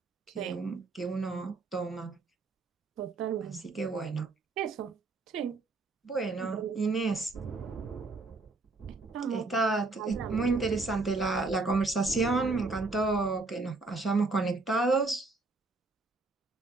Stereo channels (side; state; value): left; quieter; 3.5 dB